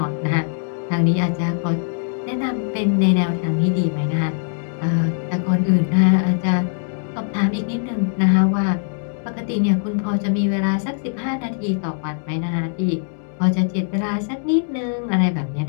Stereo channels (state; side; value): silent; right; 65 dB below the other